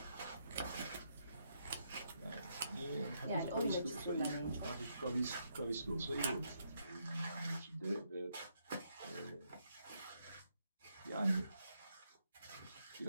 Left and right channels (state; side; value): inverted; both; correlation -0.77